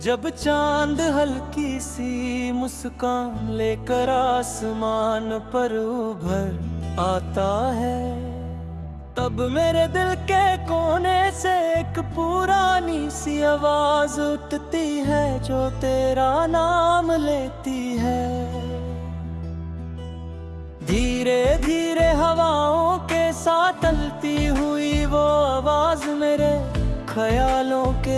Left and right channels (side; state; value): both; identical; correlation 1.00